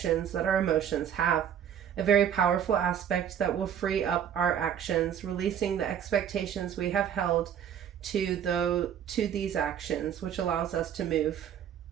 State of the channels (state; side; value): quieter; left; 9.0 dB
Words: that our emotions have, a very powerful aspect that will free up our actions, releasing the expectations we have held to these actions, which allows us to move